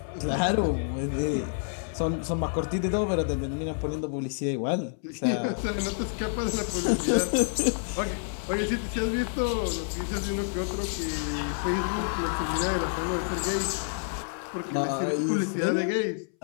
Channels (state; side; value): silent; right; 59 dB below the other